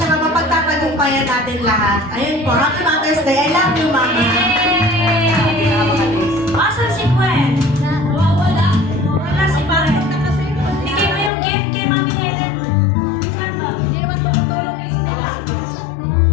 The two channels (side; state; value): right; drops out; at 11.3 s